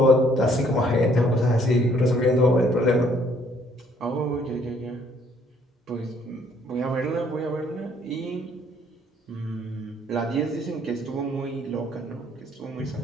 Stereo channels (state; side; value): normal; both; correlation 0.64